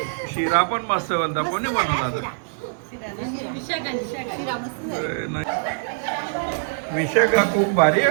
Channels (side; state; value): left; silent; digital silence